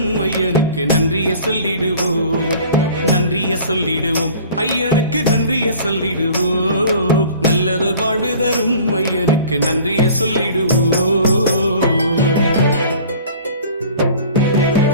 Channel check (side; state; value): both; inverted; correlation -0.46